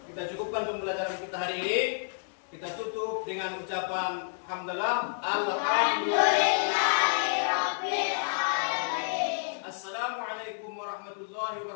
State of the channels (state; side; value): silent; right; digital silence